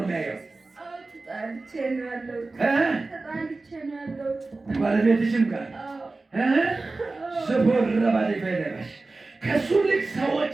የሚያየው። ተጣልቼ ነው ያለው። ባለቤትሽም ጋር ስፖር ረባዴ ፈይደሽ ከሱ ልክ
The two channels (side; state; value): left; quieter; 3.4 dB